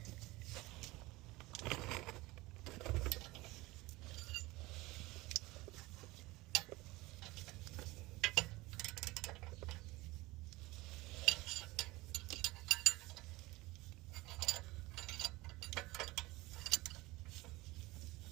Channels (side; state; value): left; quieter; 20.7 dB